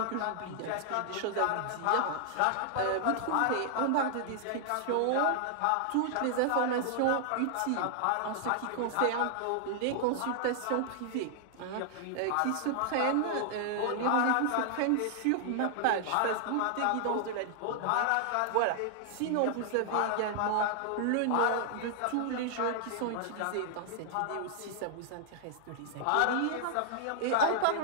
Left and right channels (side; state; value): both; different; correlation 0.00